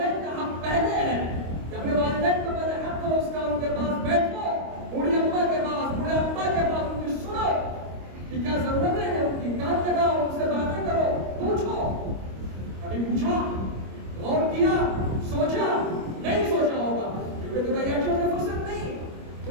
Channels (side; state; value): left; late; 25 ms